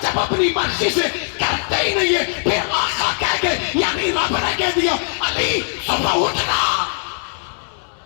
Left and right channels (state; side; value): silent; right; 61 dB below the other